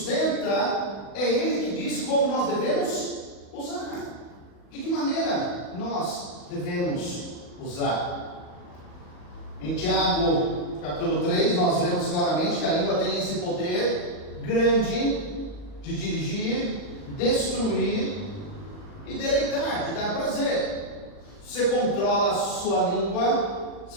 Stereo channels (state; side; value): late; right; 40 ms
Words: é Ele que diz como nós devemos usar. De que maneira nós devemos usar? Em Tiago, capítulo 3, nós vemos claramente que a língua tem esse poder grande de dirigir, destruir e deleitar, de dar prazer. Se você controla a sua língua,